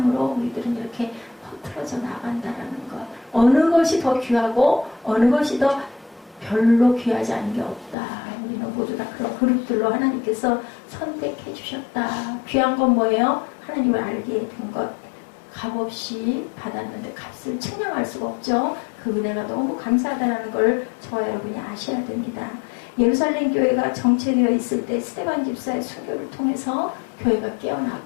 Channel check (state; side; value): drops out; right; at 8.0 s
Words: 우리들은 이렇게 퍼뜨려져 나간다라는 것. 어느 것이 더 귀하고 어느 것이 더 별로 귀하지 않은 게 없다. 우리는 모두 다 그런 그룹들로 하나님께서 선택해 주셨다. 귀한 건 뭐예요? 하나님을 알게 된 것. 값없이 받았는데 값을 측량할 수가 없죠. 그 은혜가 너무 감사하다는 걸 저와 여러분이 아셔야 됩니다. 예루살렘 교회가 정체되어 있을 때 스데반 집사의 순교를 통해서 교회가